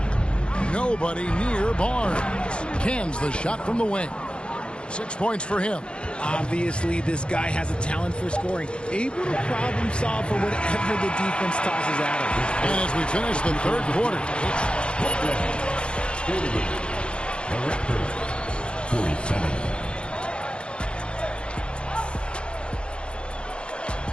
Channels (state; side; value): late; right; 0.055 ms